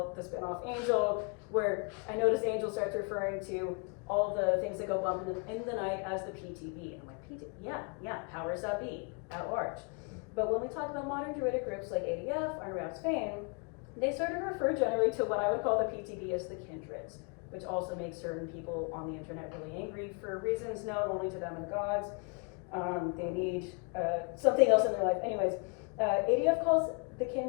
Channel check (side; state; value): right; quieter; 35.0 dB